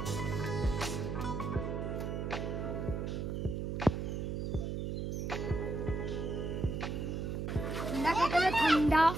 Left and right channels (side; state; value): right; noise; hum, 2 dB below the sound